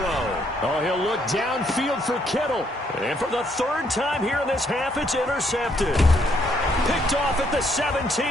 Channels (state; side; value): normal; both; correlation 0.71